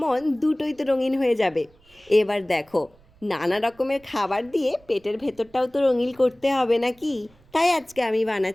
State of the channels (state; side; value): noise; right; rumble, 30 dB below the sound